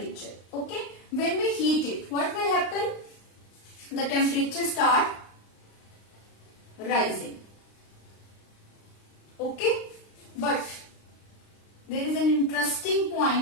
Okay. When we heat it, what will happen? The temperature start rising. Okay. But there is an interesting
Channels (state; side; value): late; right; 35 ms